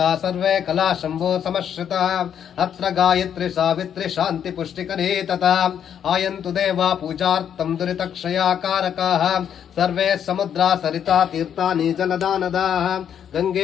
सर्वे कला शम्भो समश्रितः अत्र गायत्री सावित्री शान्ति पुष्टिकरी तथा आयन्तु देवा पूजार्थं दुरितक्षयाकारकाः सर्वे समुद्रा सरिता तीर्थानि जलदानदाः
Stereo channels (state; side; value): quieter; right; 8.8 dB